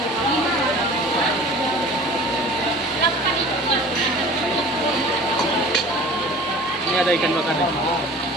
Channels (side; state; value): both; normal; correlation 0.43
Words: Ini ada ikan bakar nih.